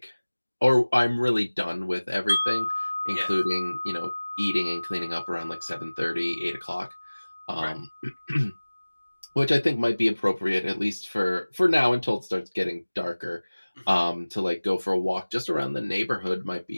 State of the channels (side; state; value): both; inverted; correlation -1.00